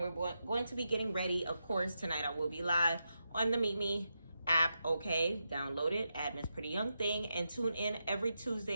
going to be getting ready. Of course, tonight I will be live on the Meet Me app, okay? Download it at Miss Pretty Young Thing and tune in every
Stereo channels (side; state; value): both; inverted; correlation -0.87